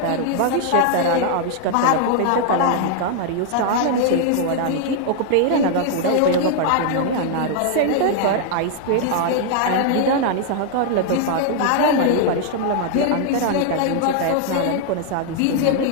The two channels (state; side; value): different; both; correlation 0.00